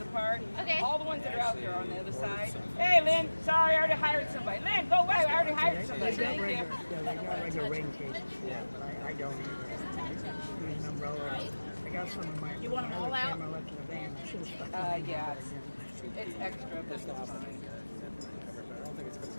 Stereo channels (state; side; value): inverted; both; correlation -1.00